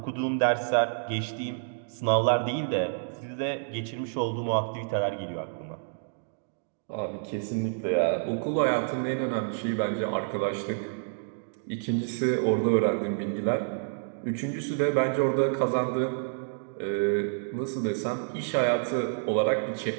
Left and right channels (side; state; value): left; silent; digital silence